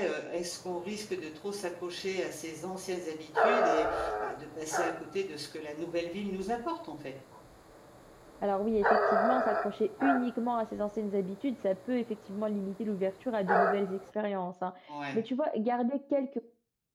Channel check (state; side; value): identical; both; correlation 1.00